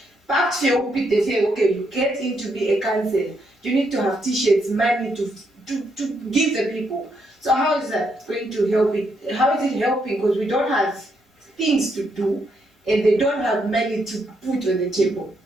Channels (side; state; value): both; normal; correlation 0.77